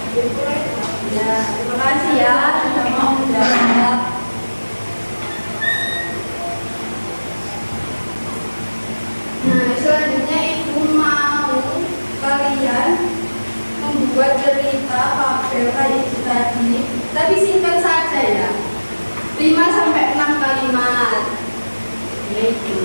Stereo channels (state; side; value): inverted; both; correlation -1.00